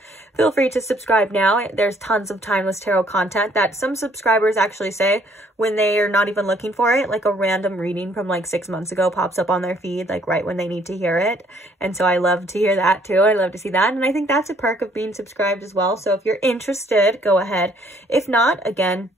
feel free to subscribe now. There's tons of timeless tarot content that some subscribers actually say when they are not even looking for it, like a random reading from like 6 months ago pops up on their feed, like right when they need to hear it. And so I love to hear that too. I love to see that. And I think that's a perk of being subscribed as well. So if you're interested, go ahead. If not, again,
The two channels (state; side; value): normal; both; correlation 0.64